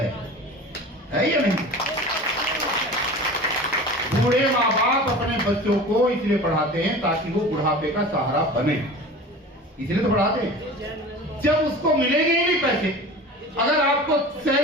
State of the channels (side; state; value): both; normal; correlation 0.37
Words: या नहीं? बूढ़े माँ बाप अपने बच्चों को इसलिए पढ़ाते हैं ताकि वो बुढ़ापे का सहारा बने, इसलिए तो पढ़ाते हैं। जब उसको मिलेंगे ही नहीं पैसे, अगर आपको